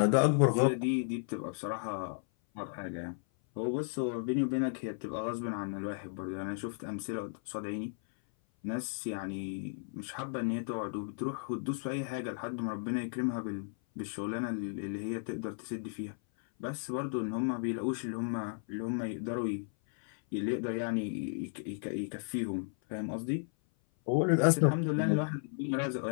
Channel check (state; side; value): silent; right; 55 dB below the other